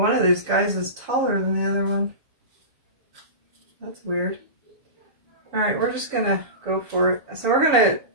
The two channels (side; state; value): left; late; 7.1 ms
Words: of these guys is taller than the other one. That's weird. All right, we're just gonna go for it. So we're gonna